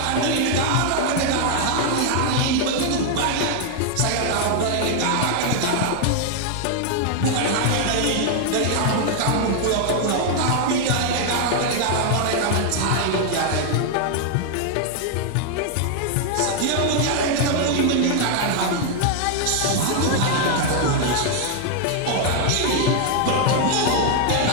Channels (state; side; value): different; both; correlation 0.00